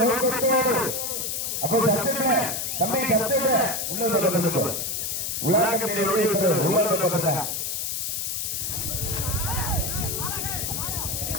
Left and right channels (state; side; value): noise; left; hiss, 2 dB below the sound